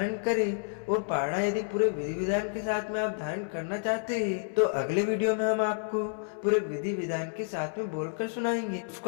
करें। और पारणा यदि पूरे विधि विधान के साथ में आप धारण करना चाहते हैं तो अगले वीडियो में हम आपको पूरे विधि विधान के साथ में बोलकर सुनाएंगे,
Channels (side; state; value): right; silent; 58 dB below the other